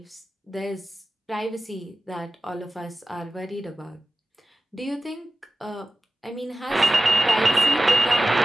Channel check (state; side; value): normal; both; correlation 0.96